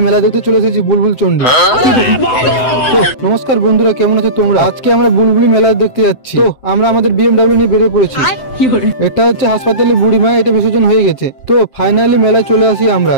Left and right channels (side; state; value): right; late; 7.9 ms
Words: মেলা দেখতে চলে এসেছি বুলবুল চন্ডী। নমস্কার বন্ধুরা, কেমন আছো তোমরা? আজকে আমরা বুলবুলি মেলা দেখতে যাচ্ছি। তো আমরা আমাদের বিএমডব্লিউ নিয়ে বেরিয়ে পড়েছি। এটা হচ্ছে হাসপাতালে বুড়িমা, এটা বিসর্জন হয়ে গেছে। তো ফাইনালি মেলায় চলে আসি আমরা।